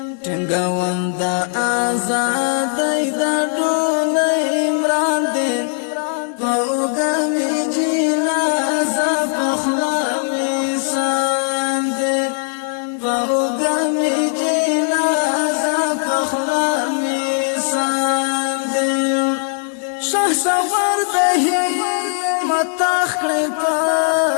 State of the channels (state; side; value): silent; right; digital silence